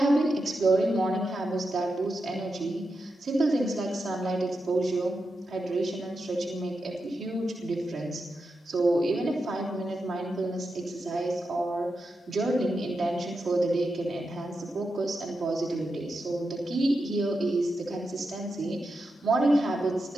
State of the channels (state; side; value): normal; both; correlation 0.88